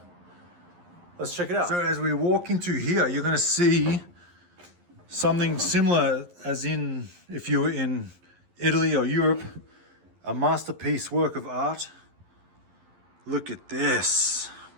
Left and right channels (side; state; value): left; late; 11 ms